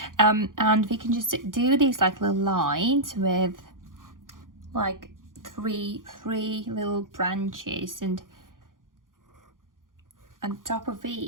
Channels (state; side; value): late; left; 0.90 ms